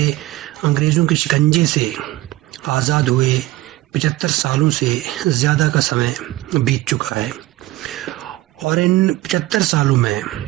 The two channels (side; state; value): left; quieter; 17.2 dB